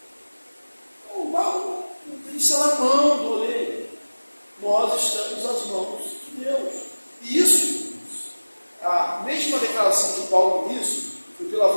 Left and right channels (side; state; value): both; inverted; correlation -1.00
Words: O barro está na mão do oleiro. Nós estamos nas mãos de Deus. E isso, a mesma declaração de Paulo nisso, foi pela